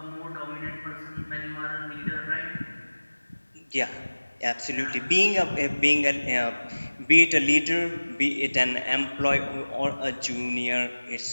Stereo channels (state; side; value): inverted; both; correlation -1.00